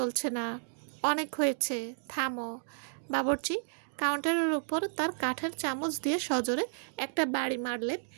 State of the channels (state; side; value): silent; left; digital silence